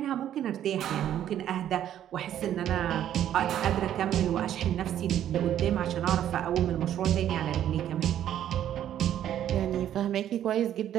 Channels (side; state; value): left; quieter; 11.0 dB